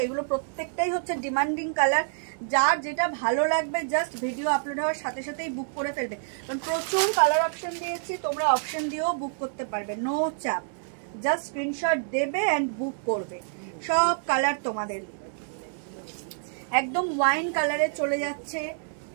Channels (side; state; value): left; silent; digital silence